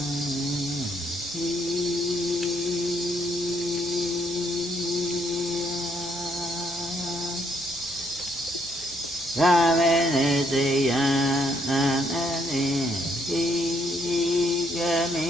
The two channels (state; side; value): normal; both; correlation 0.71